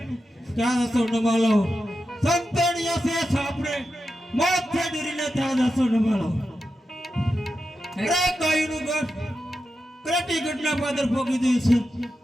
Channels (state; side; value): normal; both; correlation 0.89